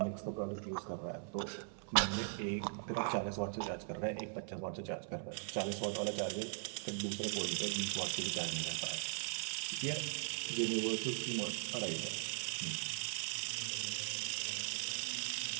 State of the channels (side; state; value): left; silent; 51 dB below the other